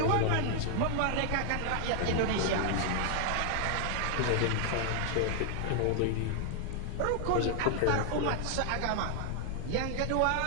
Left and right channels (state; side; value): different; both; correlation 0.00